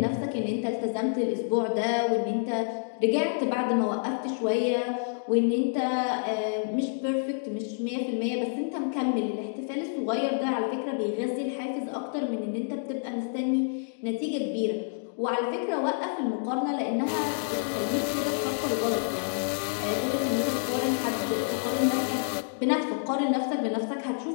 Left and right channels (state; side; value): silent; right; digital silence